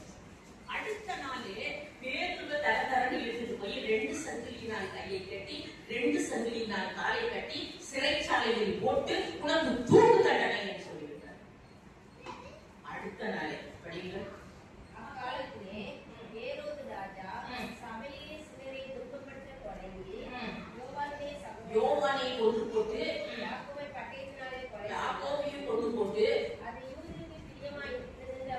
அடுத்த நாளே பேதுருவை தரன்னு இழுத்துட்டு போய் 2 சங்கிலினால் கையை கட்டி 2 சங்கிலினால் காலை கட்டி சிறைச்சாலையில் போட்டு உனக்கு தூக்கு தண்டனை என்று சொல்லிவிட்டார். அடுத்த நாளே படிங்கள். அக்காலத்திலே ஏரோது ராஜா சபையிலே சிலரை துன்பப்படுத்த தொடங்கி யோவானை கொண்டு போட்டு யாக்கோபை பட்டயத்தினாலே யாக்கோபையும் கொண்டு போட்டு அது யூதருக்கு பிரியமாய் இருந்தது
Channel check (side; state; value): both; identical; correlation 1.00